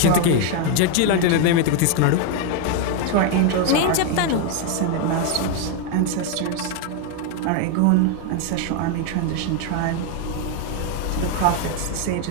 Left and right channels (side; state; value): both; different; correlation 0.01